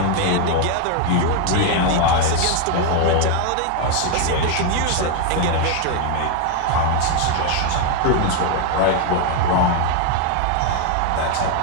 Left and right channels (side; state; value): both; different; correlation 0.01